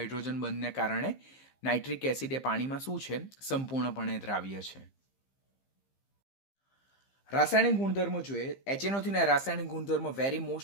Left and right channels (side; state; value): right; late; 15 ms